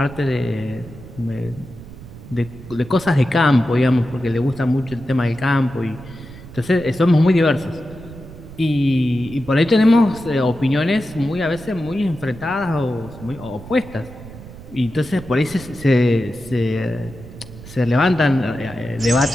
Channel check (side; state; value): right; noise; rumble, 16 dB below the sound